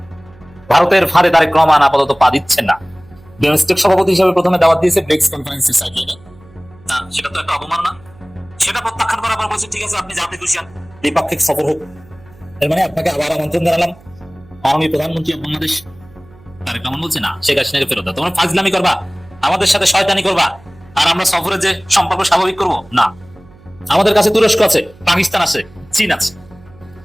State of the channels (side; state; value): right; noise; hum, 25 dB below the sound